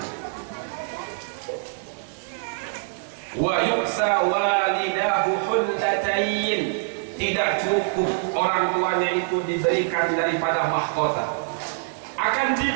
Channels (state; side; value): silent; left; digital silence